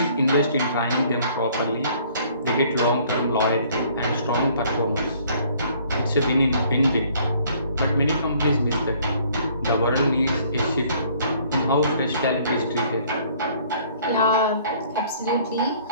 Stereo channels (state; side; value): inverted; both; correlation -0.59